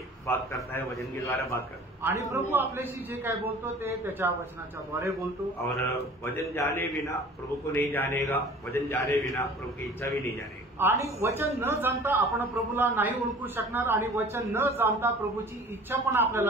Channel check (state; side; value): normal; both; correlation 0.45